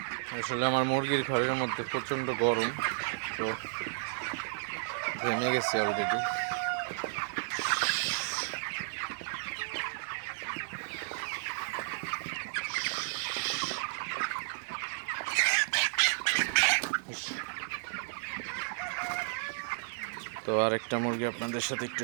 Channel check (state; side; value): silent; left; digital silence